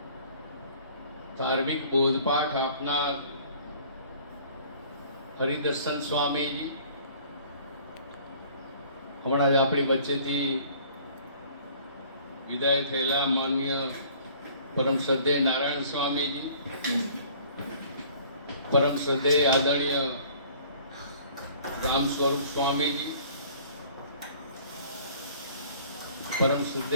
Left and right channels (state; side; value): inverted; both; correlation -0.53